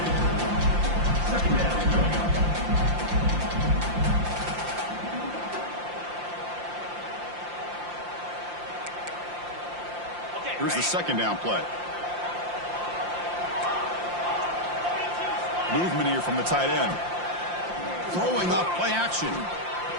Here's the second down play. Movement here from the tight end. Throwing up play action.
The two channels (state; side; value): late; left; 5.7 ms